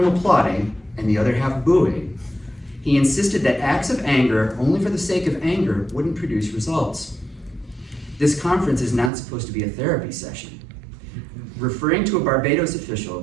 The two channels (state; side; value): drops out; left; at 9.1 s